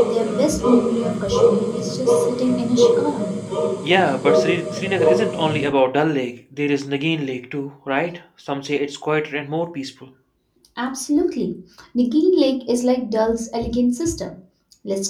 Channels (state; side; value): identical; both; correlation 1.00